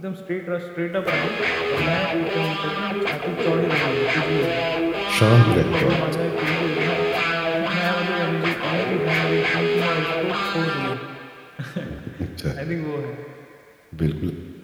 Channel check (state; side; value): identical; both; correlation 1.00